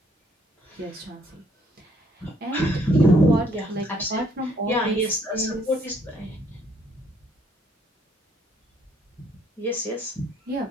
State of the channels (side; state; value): both; normal; correlation 0.66